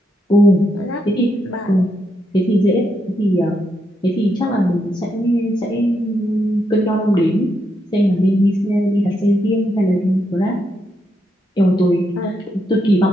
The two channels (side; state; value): both; normal; correlation 0.80